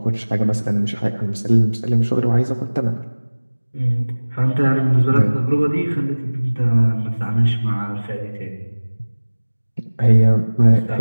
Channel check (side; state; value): both; inverted; correlation -1.00